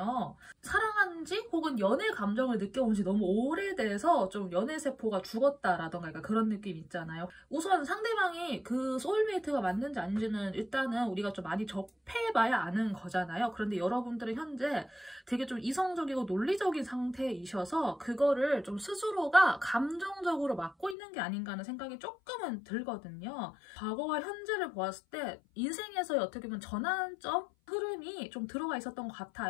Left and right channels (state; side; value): drops out; right; at 21.0 s